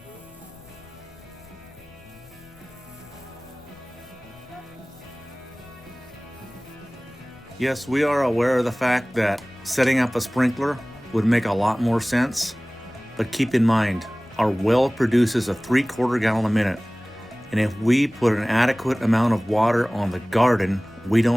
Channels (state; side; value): noise; left; rumble, 25 dB below the sound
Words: Yes, we are aware of the fact that setting up a sprinkler would make a lot more sense, but keep in mind, our well produces a 3/4 gallon a minute, and if we put an adequate amount of water on the garden, we